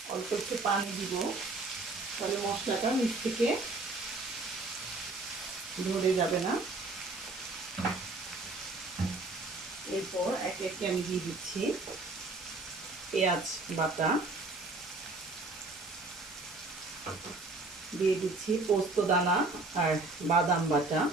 অল্প একটু পানি দিব, তাহলে মশলাটা নিচ থেকে ধরে যাবে না। এরপর একে একে আমি দিয়ে দিচ্ছি পেঁয়াজ বাটা, দিয়ে দিচ্ছি পোস্ত দানা আর বাদাম বাটা।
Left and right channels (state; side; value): quieter; left; 3.3 dB